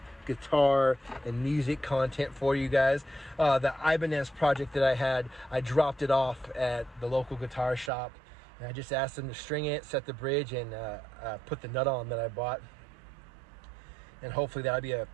guitar and music content for you guys. The Ibanez project that I had, I dropped it off at the local guitar shop. And I just asked them to string it, set the bridge, and put the nut on that I bought. And hopefully that'll be a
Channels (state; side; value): drops out; left; at 7.9 s